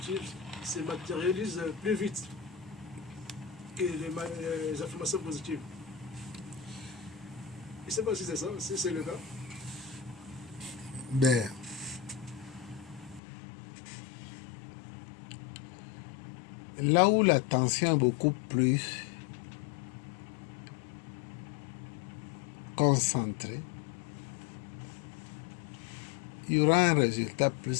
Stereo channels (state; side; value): drops out; right; at 13.2 s